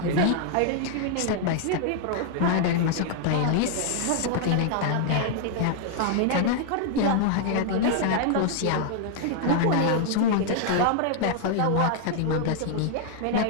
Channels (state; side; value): different; both; correlation -0.01